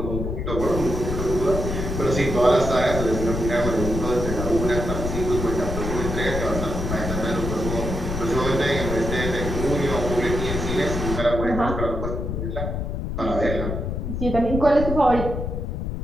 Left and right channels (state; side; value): noise; left; rumble, 3 dB below the sound